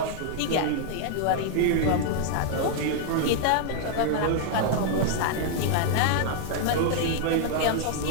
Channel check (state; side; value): different; both; correlation 0.00